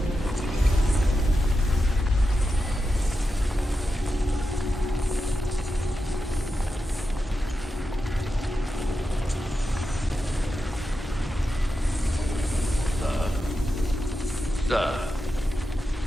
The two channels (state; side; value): normal; both; correlation 0.89